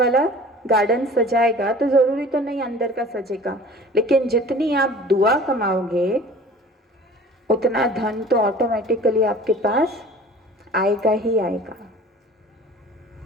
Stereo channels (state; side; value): normal; both; correlation 0.44